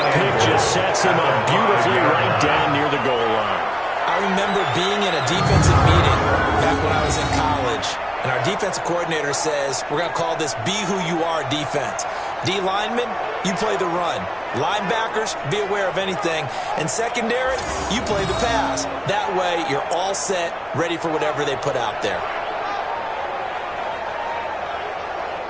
pick just sets him up beautifully right down near the goal line. I remember being in a defensive meeting back when I was in college, and our defensive coordinator says, we're going to call this Be Who You Are defense. D linemen, you play the run. Linebackers, be aware of anything. And secondary, you play the pass. That way, you're all set, ready for whatever they put out there.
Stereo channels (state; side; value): identical; both; correlation 1.00